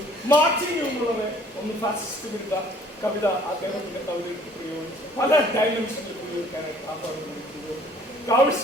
മാർച്ചിങ് എന്നുള്ളത് ഒന്ന് ഫാസിസ്റ്റ് വിരുദ്ധ കവിത അദ്ദേഹത്തിന്റെ കവിതയ്ക്ക് പ്രയോഗിച്ചു. പല ഡയമെൻഷനിൽ ഉപയോഗിക്കാനായിട്ട് ആഹ്വാനം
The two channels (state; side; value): normal; both; correlation 0.55